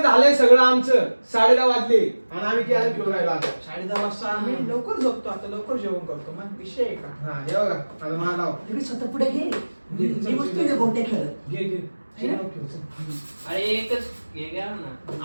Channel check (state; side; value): inverted; both; correlation -1.00